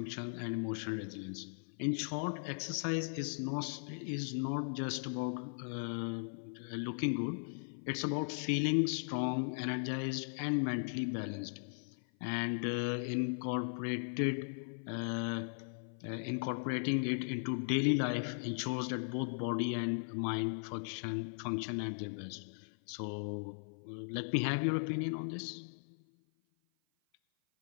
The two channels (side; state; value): right; silent; 52 dB below the other